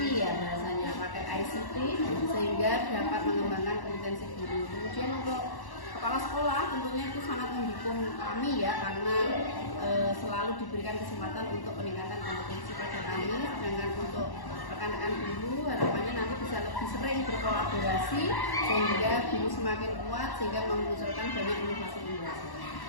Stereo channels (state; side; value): late; right; 1.1 ms